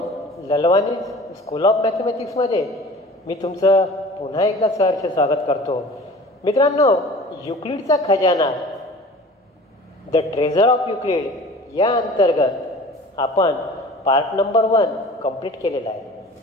Lalwani school of मॅथमॅटिक्समध्ये मी तुमचं पुन्हा एकदा सहर्ष स्वागत करतो. मित्रांनो, युक्लिडचा खजाना द ट्रेझर ऑफ युक्लिड या अंतर्गत आपण पार्ट नंबर 1 कंप्लीट केलेला आहे.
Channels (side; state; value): both; normal; correlation 0.42